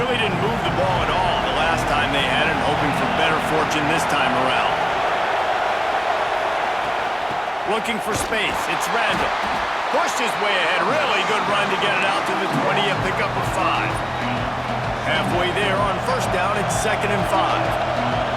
didn't move the ball at all the last time they had it, hoping for better fortune this time around. Looking for space, it's Randall. Pushed his way ahead, really good run to get it out to the 20 and pick up a 5. Halfway there on first down, it's 2nd and 5.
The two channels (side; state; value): both; identical; correlation 1.00